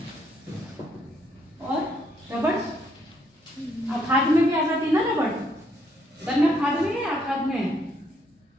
और रबड़। खाद में भी आ जाती ना रबड़। गन्ना खाद में है या खाद में है?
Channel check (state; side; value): normal; both; correlation 0.72